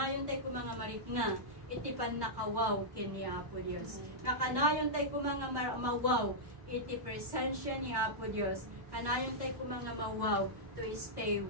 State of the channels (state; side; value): late; left; 1.1 ms